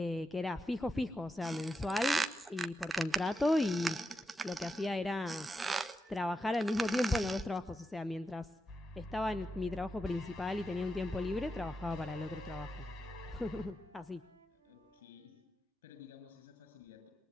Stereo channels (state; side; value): normal; both; correlation 0.88